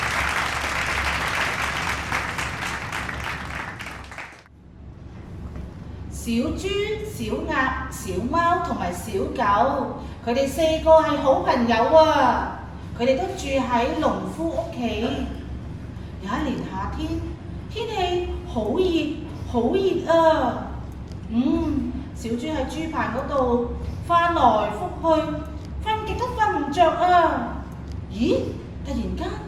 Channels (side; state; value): both; identical; correlation 1.00